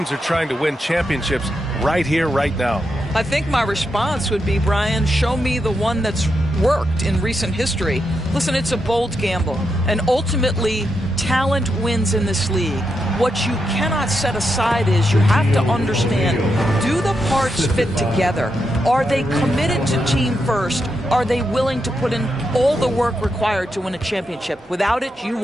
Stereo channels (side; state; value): both; normal; correlation 0.84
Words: are trying to win championships right here, right now. I think my response would be, Brian, show me the one that's worked in recent history. Listen, it's a bold gamble, and ultimately talent wins in this league. What you cannot set aside is you have to understand, do the parts fit together? Are they committed to team first? Are they willing to put in all the work required to win a championship? Without it, you